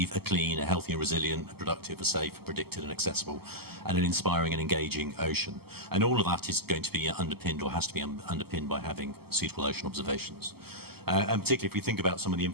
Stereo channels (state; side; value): late; left; 0.96 ms